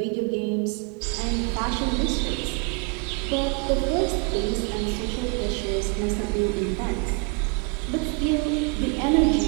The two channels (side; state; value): left; quieter; 34.1 dB